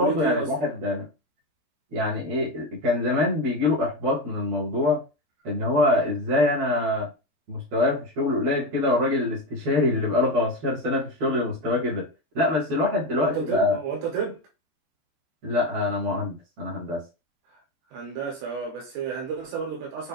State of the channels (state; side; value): late; left; 14 ms